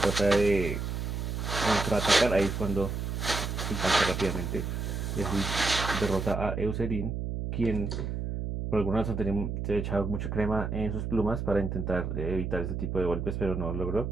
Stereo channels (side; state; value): right; noise; hum, 3 dB below the sound